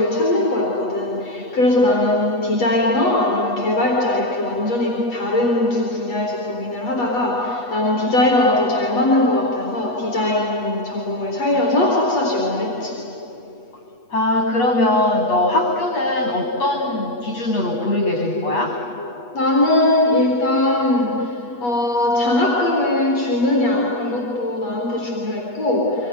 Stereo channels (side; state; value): right; late; 8.3 ms